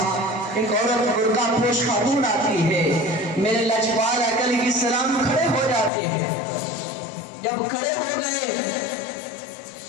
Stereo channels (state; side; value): drops out; right; at 5.9 s